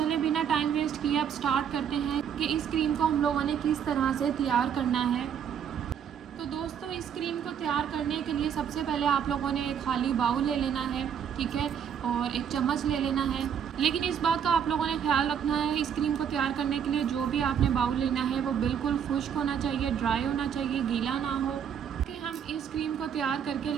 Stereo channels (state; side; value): quieter; left; 8.2 dB